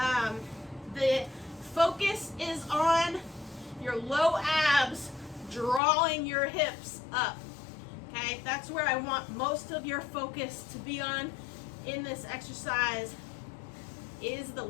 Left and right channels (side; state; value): right; drops out; at 5.8 s